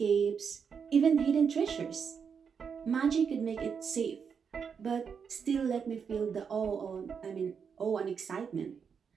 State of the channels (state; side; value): quieter; left; 6.5 dB